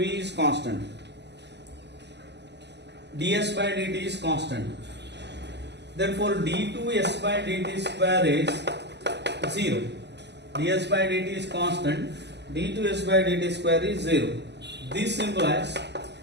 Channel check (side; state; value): left; late; 0.50 ms